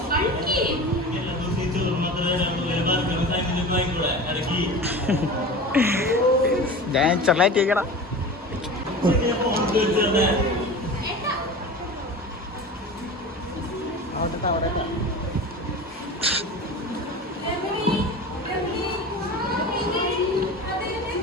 ഞാൻ ചെറുതായിട്ട് കേൾക്കണം.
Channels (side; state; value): both; normal; correlation 0.33